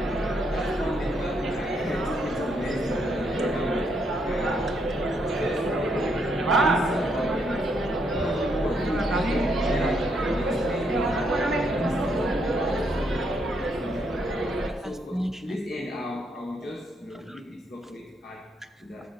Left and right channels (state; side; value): normal; both; correlation 0.75